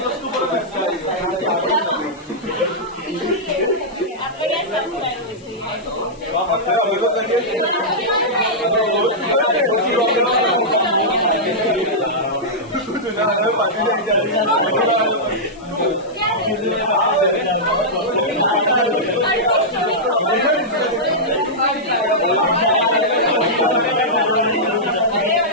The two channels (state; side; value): noise; left; hiss, 27 dB below the sound